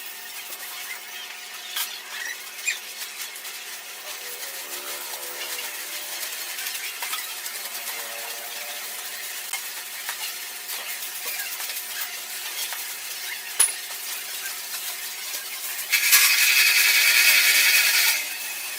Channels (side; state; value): both; identical; correlation 1.00